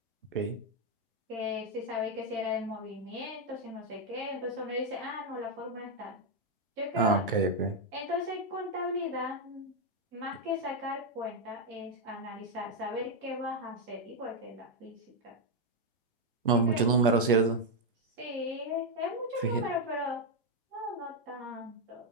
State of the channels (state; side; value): normal; both; correlation 0.02